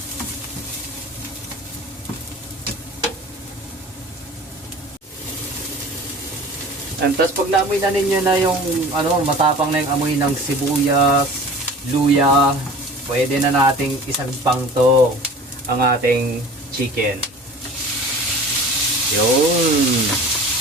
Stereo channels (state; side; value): normal; both; correlation 0.41